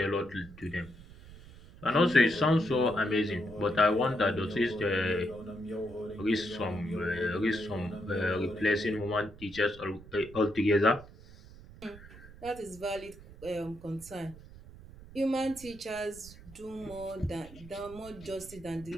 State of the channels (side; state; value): right; noise; rumble, 18 dB below the sound